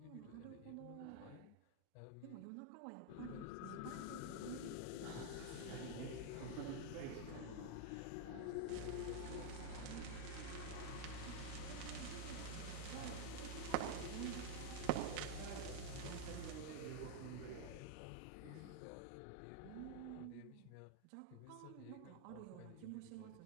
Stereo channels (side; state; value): both; different; correlation 0.00